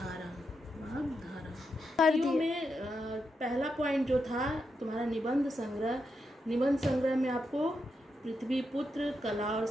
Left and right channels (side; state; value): both; normal; correlation 0.84